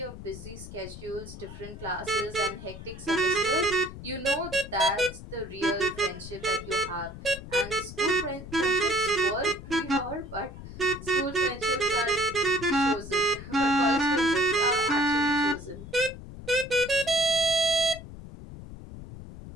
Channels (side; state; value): left; noise; rumble, 13 dB below the sound